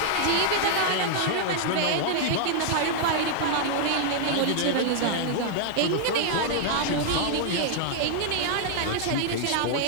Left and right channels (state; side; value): different; both; correlation -0.01